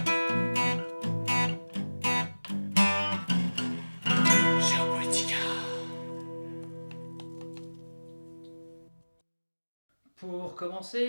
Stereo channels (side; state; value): both; inverted; correlation -1.00